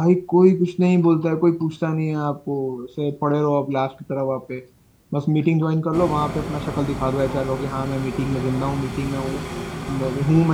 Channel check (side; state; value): both; identical; correlation 1.00